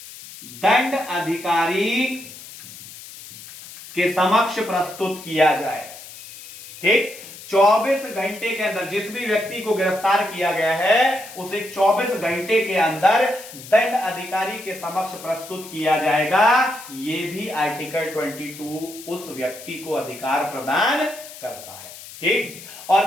दंड अधिकारी के समक्ष प्रस्तुत किया जाए। ठीक, 24 घंटे के अंदर जिस भी व्यक्ति को गिरफ्तार किया गया है उसे 24 घंटे के अंदर दंड अधिकारी के समक्ष प्रस्तुत किया जाएगा। यह भी आर्टिकल 22 उस व्यक्ति को अधिकार प्रदान करता है। ठीक, और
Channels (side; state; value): left; noise; hiss, 15 dB below the sound